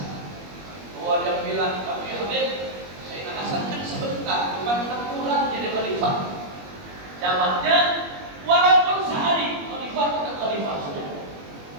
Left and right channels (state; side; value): late; left; 21 ms